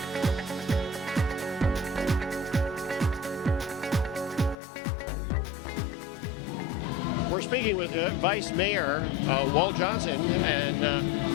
We're speaking with Vice Mayor Walt Johnson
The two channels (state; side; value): drops out; right; at 4.5 s